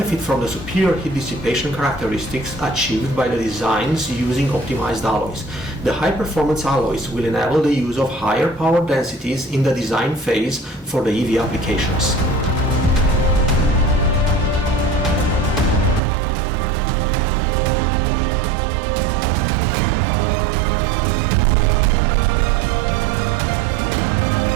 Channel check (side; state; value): left; drops out; at 16.0 s